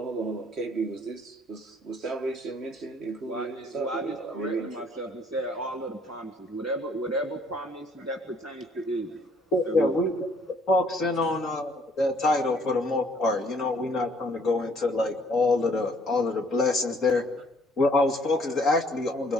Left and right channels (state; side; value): normal; both; correlation 0.62